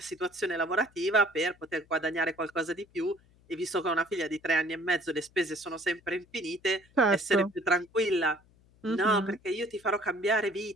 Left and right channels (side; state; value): left; noise; hum, 30 dB below the sound